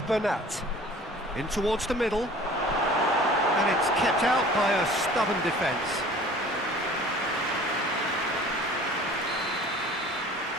Bernat. In towards the middle. And it's kept out by a stubborn defence.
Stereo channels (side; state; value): both; normal; correlation 0.46